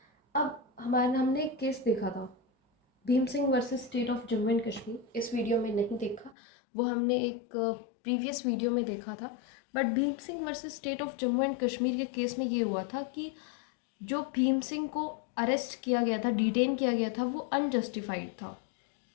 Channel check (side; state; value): right; drops out; at 6.4 s